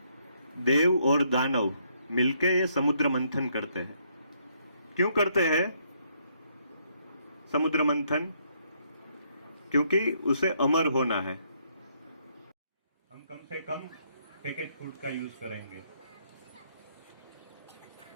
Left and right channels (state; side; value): inverted; both; correlation -0.72